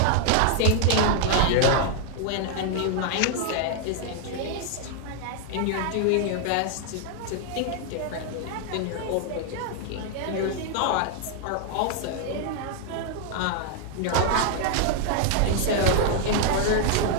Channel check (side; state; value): both; different; correlation 0.00